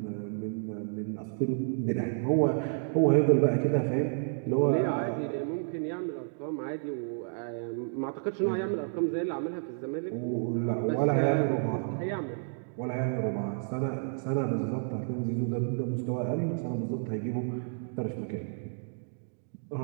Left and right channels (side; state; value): left; silent; digital silence